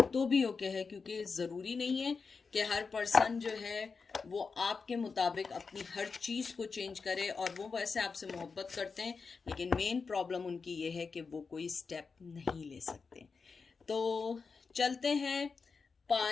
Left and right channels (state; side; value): quieter; right; 4.9 dB